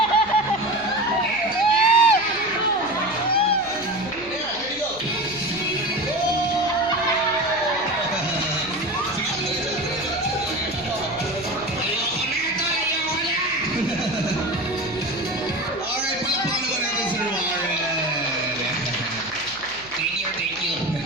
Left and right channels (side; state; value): right; noise; hum, 22 dB below the sound